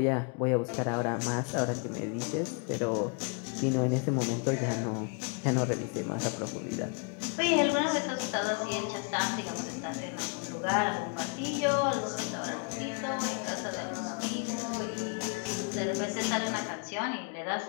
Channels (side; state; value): right; quieter; 35.3 dB